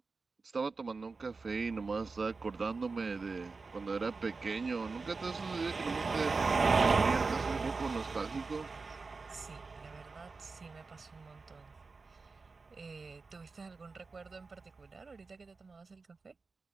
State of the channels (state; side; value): quieter; left; 4.2 dB